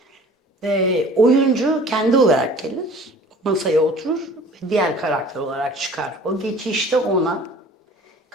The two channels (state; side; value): normal; both; correlation 0.47